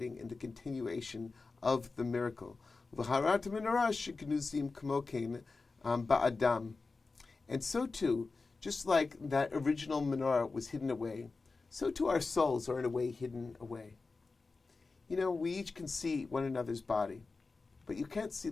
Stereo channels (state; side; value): quieter; right; 4.0 dB